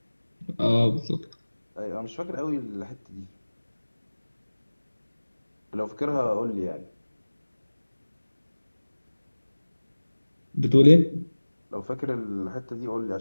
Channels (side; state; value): both; inverted; correlation -1.00